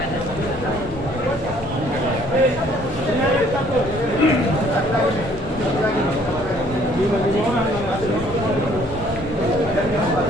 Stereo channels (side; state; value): both; normal; correlation 0.60